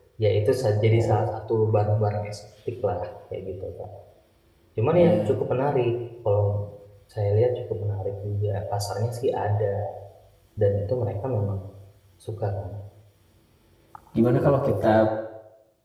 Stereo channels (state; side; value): identical; both; correlation 1.00